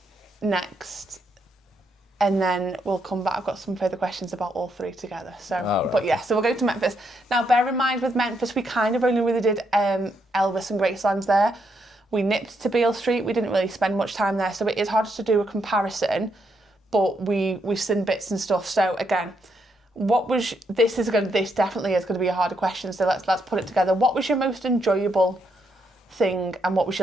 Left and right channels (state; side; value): normal; both; correlation 0.78